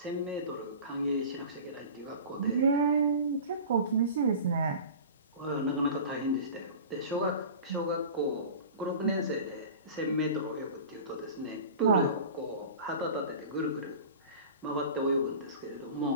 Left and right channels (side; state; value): both; inverted; correlation -0.36